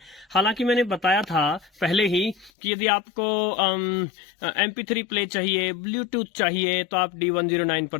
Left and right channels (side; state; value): right; drops out; at 2.5 s